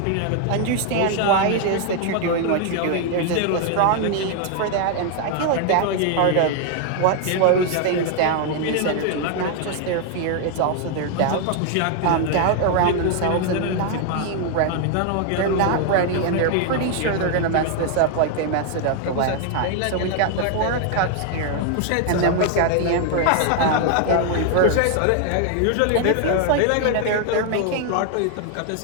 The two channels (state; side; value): different; both; correlation 0.00